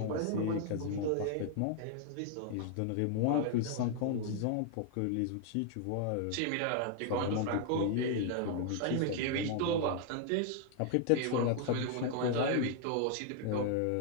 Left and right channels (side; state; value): both; different; correlation 0.00